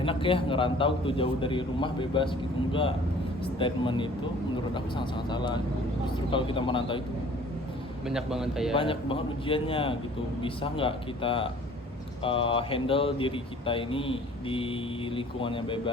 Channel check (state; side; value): normal; both; correlation 0.51